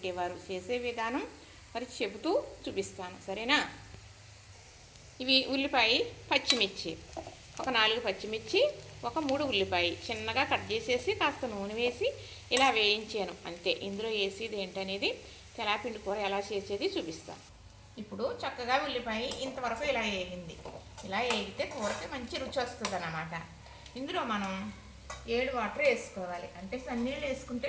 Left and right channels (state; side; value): identical; both; correlation 1.00